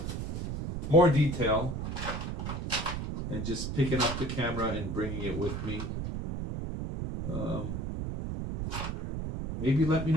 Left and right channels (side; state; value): right; noise; rumble, 4 dB below the sound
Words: more detail and just picking up the camera and bringing it with me. Maybe let me